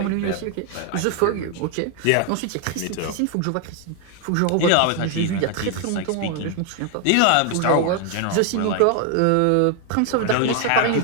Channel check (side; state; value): both; different; correlation 0.00